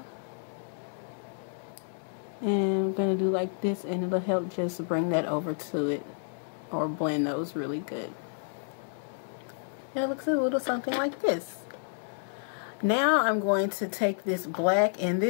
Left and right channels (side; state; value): right; silent; digital silence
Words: And I'm going to do like this, and it'll help just bring that over to it, or blend those really good. And it looks a little something like this. Now I'm going to take this black, and